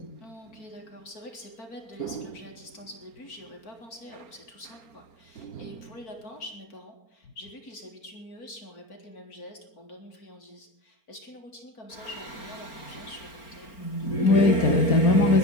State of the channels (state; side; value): late; right; 4.4 ms